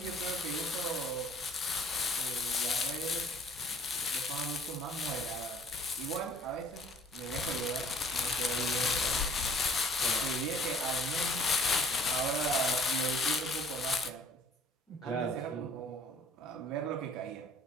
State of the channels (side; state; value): both; normal; correlation 0.54